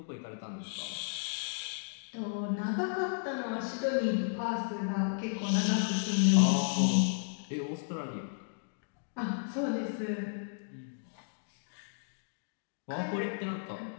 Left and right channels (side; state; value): right; silent; digital silence